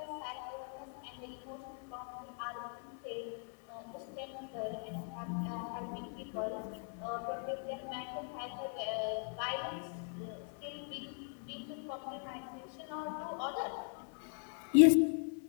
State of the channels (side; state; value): right; silent; 51 dB below the other